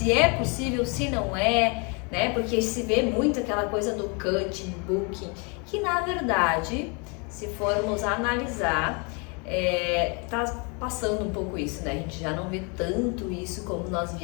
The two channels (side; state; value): right; quieter; 33.0 dB